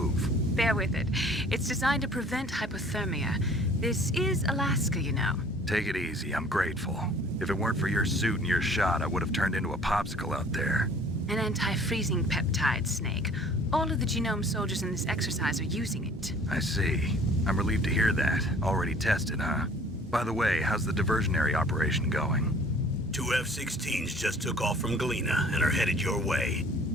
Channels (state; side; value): normal; both; correlation 0.52